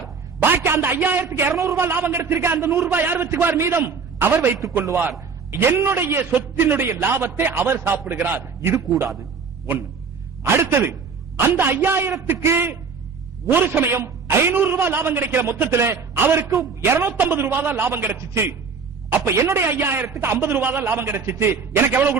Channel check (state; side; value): quieter; left; 5.4 dB